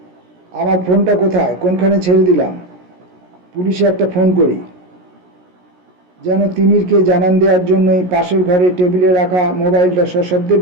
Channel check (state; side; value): late; left; 17 ms